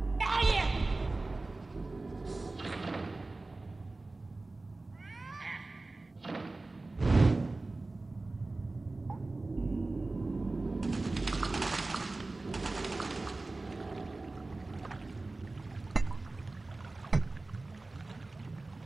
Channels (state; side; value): quieter; left; 3.2 dB